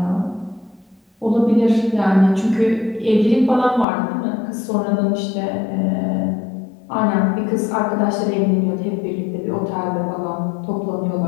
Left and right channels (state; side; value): drops out; right; at 3.9 s